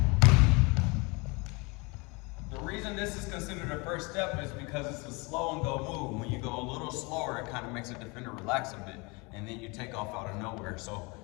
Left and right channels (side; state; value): right; quieter; 28.0 dB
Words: The reason this is considered a first step is because it's a slow and go move. When you go a little slower, it kind of makes a defender relax a bit, and then you take off out of nowhere. So